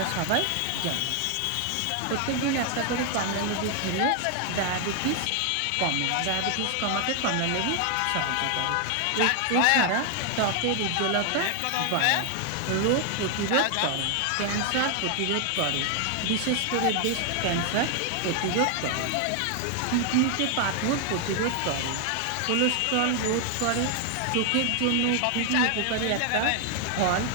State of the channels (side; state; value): both; different; correlation 0.00